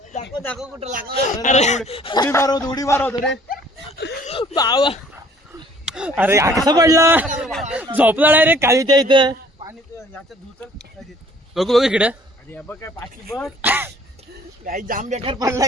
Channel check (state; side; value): normal; both; correlation 0.56